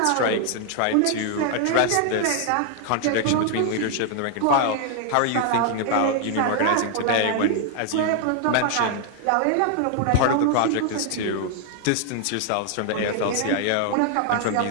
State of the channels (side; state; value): both; different; correlation 0.00